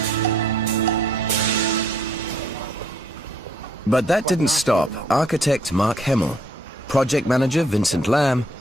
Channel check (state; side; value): normal; both; correlation 0.65